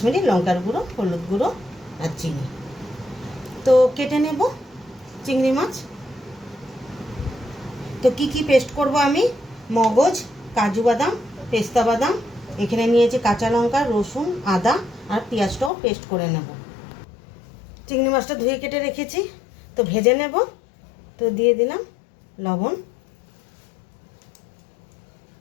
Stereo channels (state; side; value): drops out; right; at 15.7 s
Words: লঙ্কার গুঁড়ো, হলুদ গুঁড়ো আর চিনি। তো কেটে নেব চিংড়ি মাছ। তো কি কি পেস্ট করব আমি: মগজ, কাজু বাদাম, পেস্তা বাদাম, এখানে নিয়েছি কাঁচা লঙ্কা, রসুন, আদা আর পেঁয়াজটাও পেস্ট করে নেব। চিংড়ি মাছটা ধুয়ে কেটে রেখেছি, তো ভেজে নেব। তো দিয়ে দিলাম লবণ,